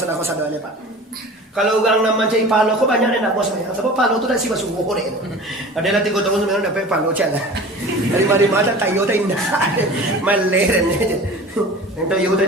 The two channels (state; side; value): normal; both; correlation 0.39